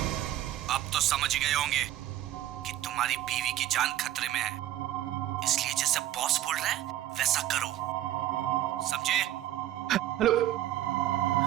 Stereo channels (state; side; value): quieter; left; 13.3 dB